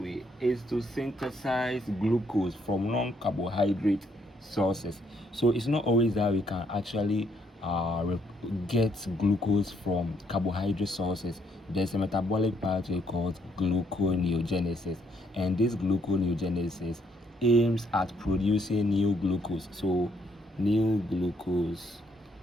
is to synthesize glucose from non-carbohydrate sources. So it's not always that we can actually get glucose from carbohydrate sources. There's a metabolic pathway called gluconeogenesis, and this gluconeogenesis aims at producing new glucose. So new glucose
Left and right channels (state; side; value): normal; both; correlation 0.71